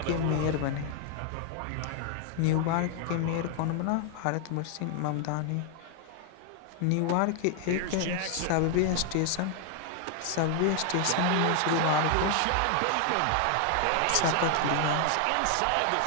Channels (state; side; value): different; both; correlation 0.00